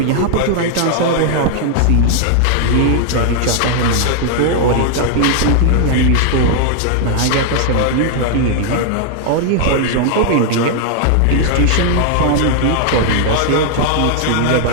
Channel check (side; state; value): both; different; correlation 0.00